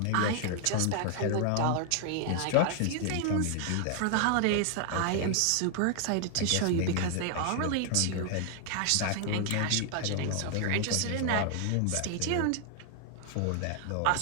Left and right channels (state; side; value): different; both; correlation 0.00